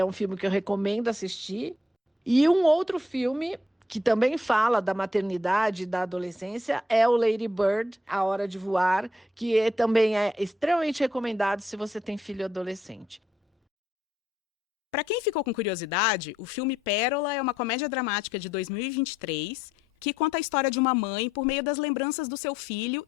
um filme que eu recomendo assistir. E um outro filme que também fala da maternidade e da adolescência é o Lady Bird, A Hora de Voar, que também é extremamente recomendado se você tem filho adolescente. Para quem ficou com curiosidade, o filme Pérola é uma comédia dramática de 2023 que conta a história de uma mãe por meio das lembranças do seu filho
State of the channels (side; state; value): both; normal; correlation 0.74